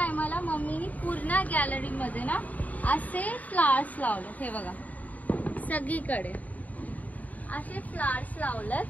मम्मीनी पूर्ण गॅलरीमध्ये ना असे फ्लावर्स लावले. हे बघा सगळीकडे असे फ्लावर्स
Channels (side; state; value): right; late; 0.075 ms